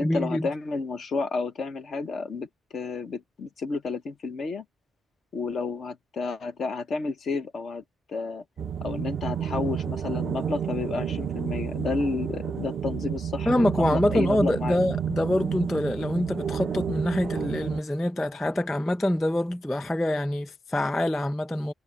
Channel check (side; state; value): both; normal; correlation 0.86